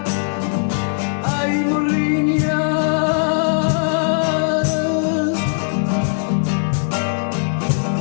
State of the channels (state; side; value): silent; right; digital silence